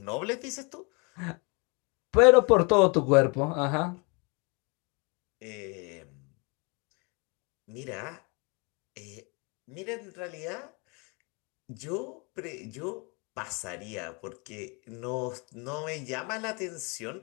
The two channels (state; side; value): quieter; right; 31.3 dB